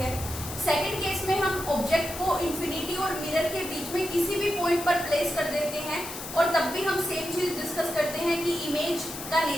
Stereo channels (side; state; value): left; noise; hiss, 9 dB below the sound